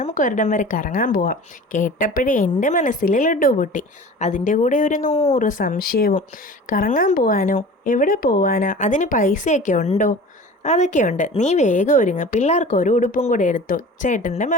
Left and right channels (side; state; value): both; normal; correlation 0.39